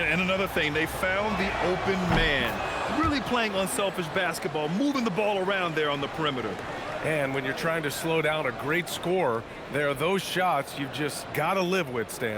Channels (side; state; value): both; identical; correlation 1.00